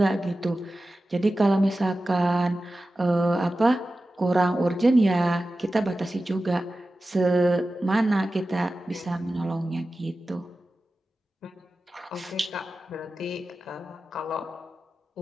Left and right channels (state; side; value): normal; both; correlation 0.94